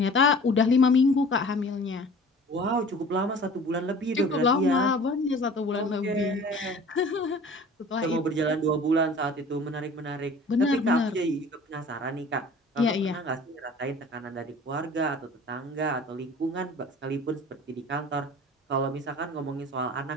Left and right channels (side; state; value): both; normal; correlation 0.45